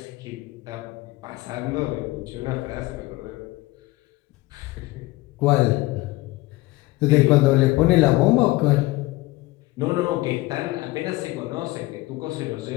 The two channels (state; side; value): quieter; right; 19.7 dB